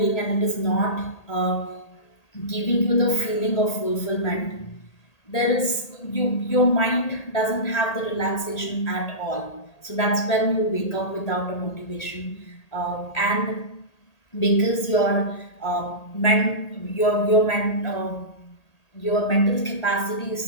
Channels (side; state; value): right; late; 1.8 ms